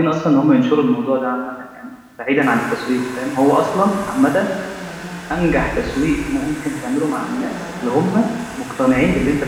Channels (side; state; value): both; identical; correlation 1.00